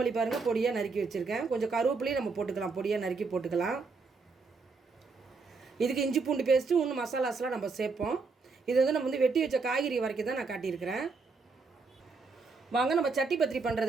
பாருங்கள் பொடியாக நறுக்கி வச்சுருக்கேன். கொஞ்சம் கருவேப்பிலையும் நம்ம போட்டுக்கலாம், பொடியாக நறுக்கி போட்டுக்கலாம். இதுக்கு இஞ்சி பூண்டு பேஸ்ட்டு இன்னும் மசாலாஸ்லாம் நம்ம சேர்ப்போம். இது வந்து நம்ம வந்து வெட்டி வச்ச காய்கறி வரைக்கும் தான் நான் காட்டியிருக்கிறேன். வாங்க, நம்ம சட்டி பத்திரி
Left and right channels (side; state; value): left; quieter; 4.3 dB